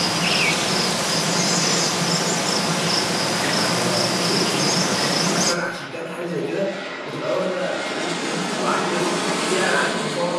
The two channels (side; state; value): both; identical; correlation 1.00